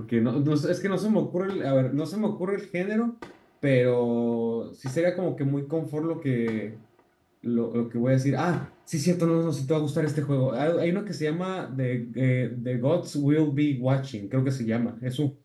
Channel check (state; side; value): identical; both; correlation 1.00